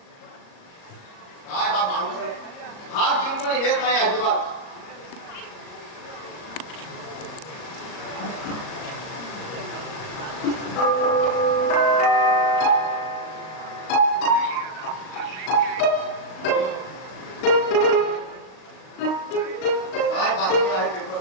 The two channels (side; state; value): right; late; 38 ms